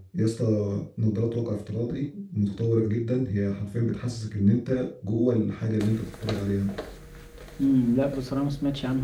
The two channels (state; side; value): identical; both; correlation 1.00